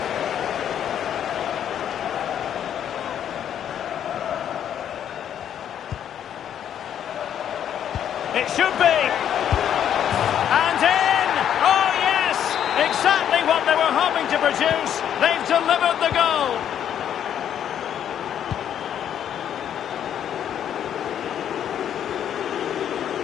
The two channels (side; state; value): right; quieter; 9.6 dB